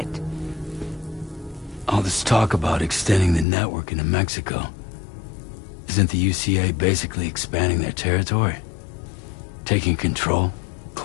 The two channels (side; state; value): right; drops out; at 3.5 s